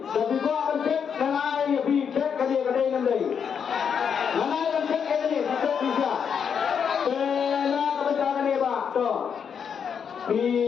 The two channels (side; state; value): right; quieter; 7.2 dB